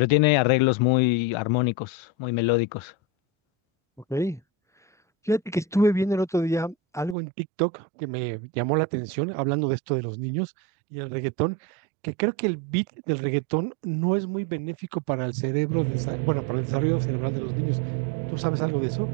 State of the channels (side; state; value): left; drops out; at 7.2 s